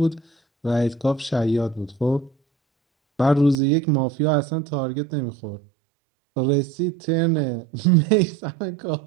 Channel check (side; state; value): left; drops out; at 3.6 s